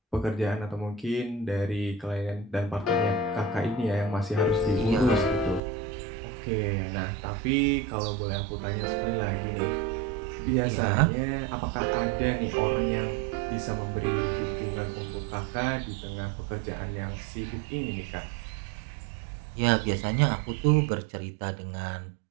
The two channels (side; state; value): left; drops out; at 5.6 s